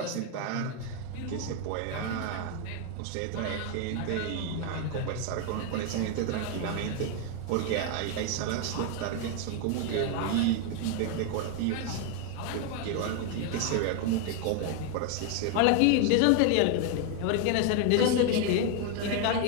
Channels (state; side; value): different; both; correlation 0.01